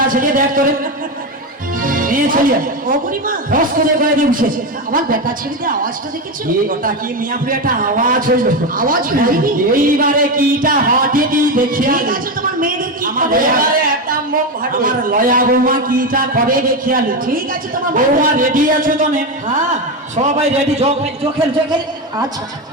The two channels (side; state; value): both; normal; correlation 0.14